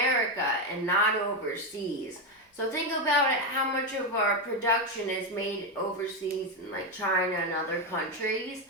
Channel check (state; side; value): normal; both; correlation 0.09